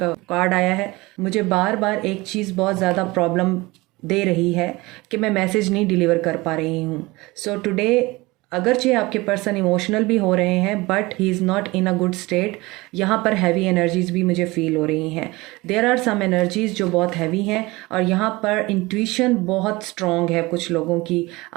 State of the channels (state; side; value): quieter; left; 21.9 dB